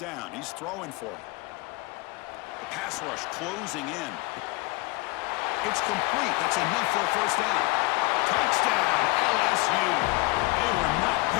he's throwing for it. The pass rush closing in. It's complete. That's enough for a first down. Touchdown, LSU. They were not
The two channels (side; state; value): right; quieter; 23.4 dB